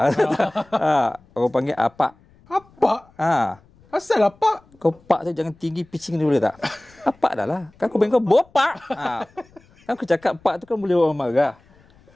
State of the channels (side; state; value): left; noise; rumble, 29 dB below the sound